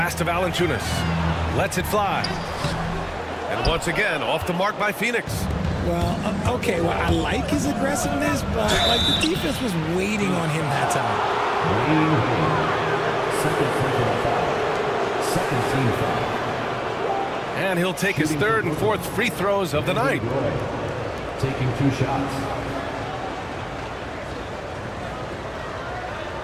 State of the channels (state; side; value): identical; both; correlation 1.00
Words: to Valanciunas. Lets it fly. And once again, off the mark by Phoenix. Well, okay, well, I like his aggressiveness, but like the defense was waiting on him that time. Second team foul. And he'll take his third and fourth free throws of the night. Taking 2 shots.